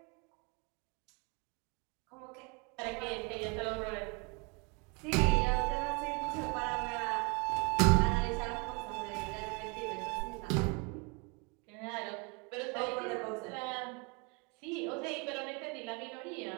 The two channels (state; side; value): quieter; left; 31.7 dB